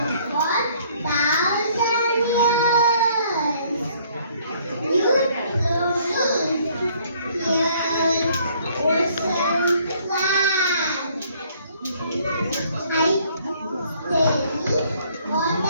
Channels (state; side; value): inverted; both; correlation -0.62